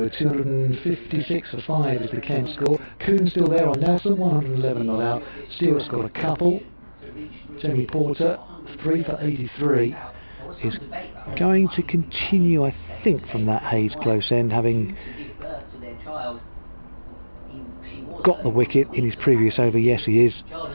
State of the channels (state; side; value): inverted; both; correlation -1.00